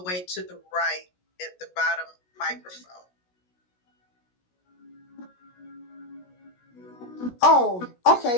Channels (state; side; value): late; right; 16 ms